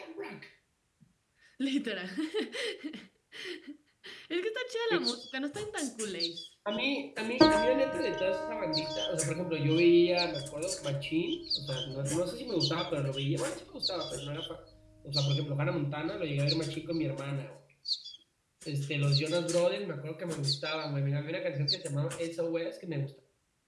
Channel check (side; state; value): both; identical; correlation 1.00